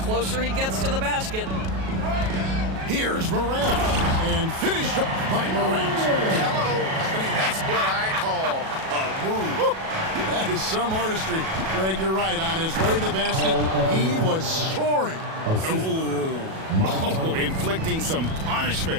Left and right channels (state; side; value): late; left; 37 ms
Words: he gets to the basket. Here's Morant. And finished off by Morant. Hello. I mean, that's what I call a move. That is some artistry. Greg, you're right. On his way to the basket, he was soaring. Oh, inflicting some